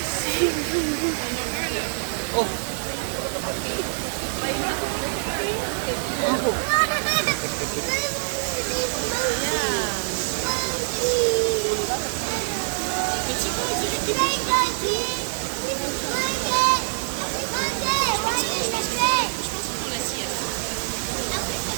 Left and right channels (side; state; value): left; silent; digital silence